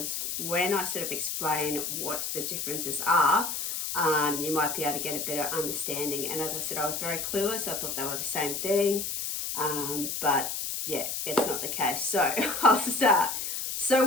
when I sort of explain what the differences are, you might be able to get a better understanding. And as I said, I was very clueless. I thought they were the same thing, but yeah, it's not the case. So I'll start. So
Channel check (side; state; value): left; noise; hiss, 3 dB below the sound